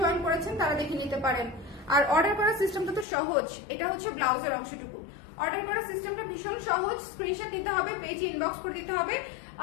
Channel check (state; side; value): drops out; right; at 3.1 s